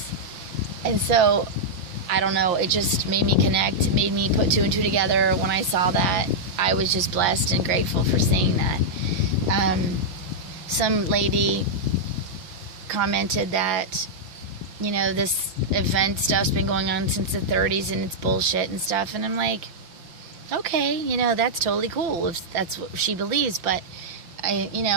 And so, I don't know, it just made me connect, made me put 2 and 2 together. When I saw that, I was just blessed and grateful for seeing that. Some lady commented that, you know, this event stuff's been going on since the 30s and it's bullshit and stuff. And I'm like, okay, you know, that's totally cool if that's what she believes. But,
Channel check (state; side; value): late; left; 5.7 ms